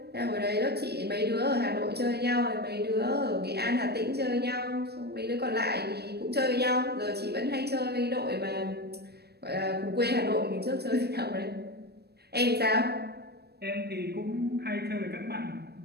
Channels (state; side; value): late; left; 0.47 ms